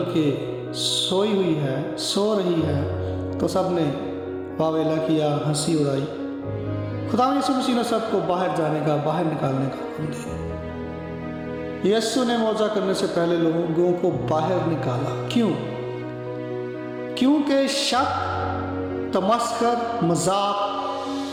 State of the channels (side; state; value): both; identical; correlation 1.00